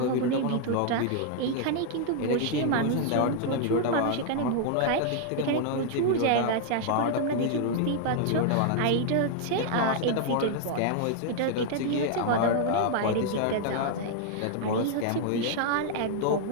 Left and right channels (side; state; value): both; different; correlation 0.00